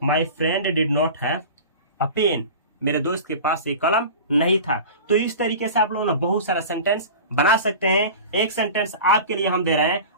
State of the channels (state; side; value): inverted; both; correlation -0.35